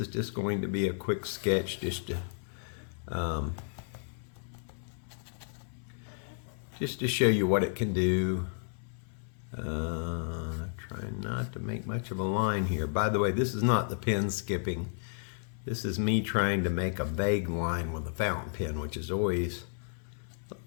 just going to be a quick sketch just to show you what it can do. Trying not to make much of a line here. By the way, this is not the pen skipping. This is me trying to make a vague line with a fountain pen, which is always a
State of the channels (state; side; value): silent; right; 56 dB below the other